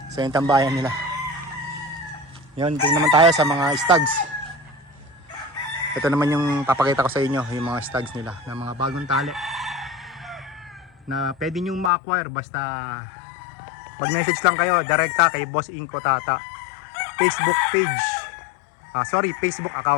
So yung tambayan nila. Yun, tingnan naman tayo sa mga stags. Ito naman yung papakita ko sa inyo, yung mga stags nila na mga bagong tali na pwede nyo ma-acquire basta mag-message lang kayo direkta kay Boss Inko Tata Facebook page, Facebook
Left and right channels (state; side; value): drops out; right; at 11.9 s